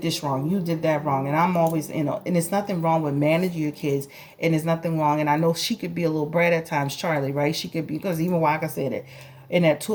this wrong. You did that wrong. And I'm always, and it's nothing wrong with managing your kids. And there's nothing wrong. And I know she could be a little brat at times, Charlie, right? She could be, because even Waka said it. In that Two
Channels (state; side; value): identical; both; correlation 1.00